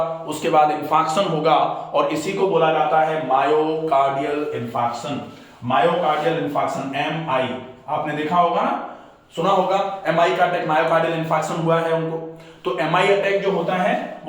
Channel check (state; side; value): identical; both; correlation 1.00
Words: उसके बाद इंफाक्शन होगा और इसी को बोला जाता है myocardial infarction. Myocardial infarction, MI, आपने देखा होगा ना, सुना होगा MI का अटैक, मायोकार्डियल इंफाक्शन हुआ है उनको। तो MI अटैक जो होता है